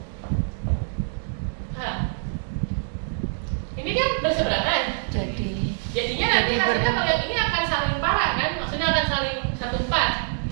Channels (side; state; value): left; silent; digital silence